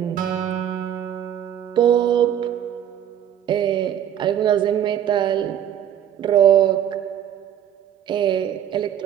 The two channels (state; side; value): quieter; left; 10.1 dB